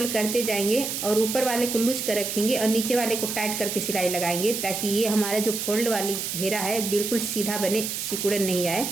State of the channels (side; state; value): right; noise; hiss, 4 dB below the sound